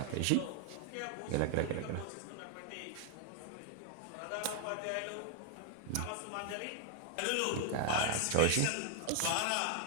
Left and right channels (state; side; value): different; both; correlation 0.00